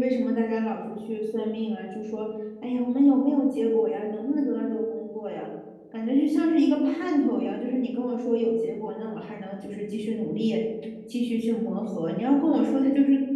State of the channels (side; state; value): both; identical; correlation 1.00